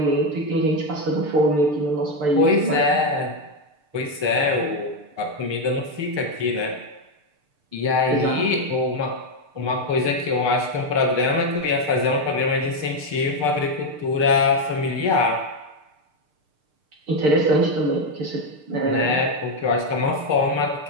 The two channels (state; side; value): late; left; 6.7 ms